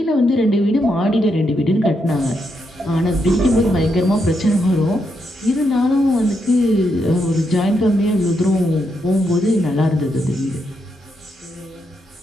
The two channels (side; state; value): both; normal; correlation 0.81